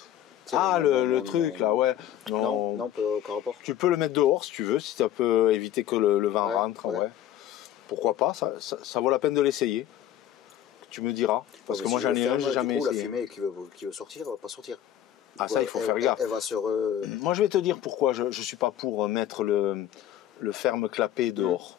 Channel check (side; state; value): right; quieter; 11.4 dB